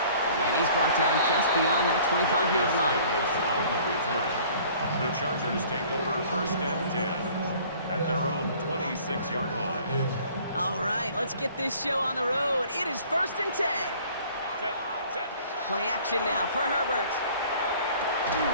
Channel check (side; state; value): both; inverted; correlation -0.52